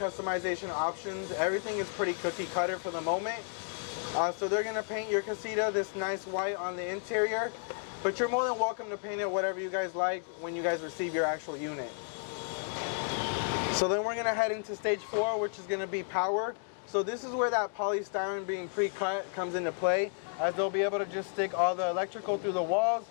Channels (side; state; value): right; silent; 56 dB below the other